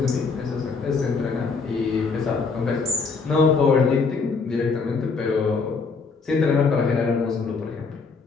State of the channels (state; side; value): quieter; right; 4.7 dB